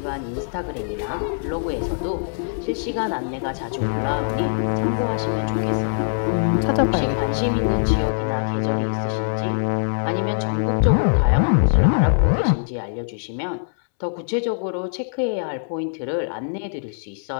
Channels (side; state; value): right; silent; 64 dB below the other